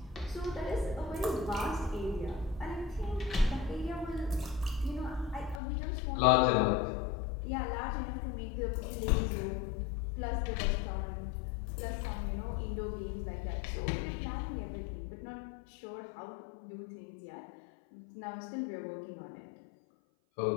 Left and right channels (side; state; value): right; drops out; at 5.6 s